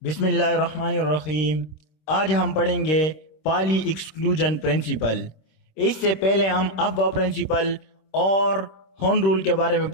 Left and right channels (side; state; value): right; late; 26 ms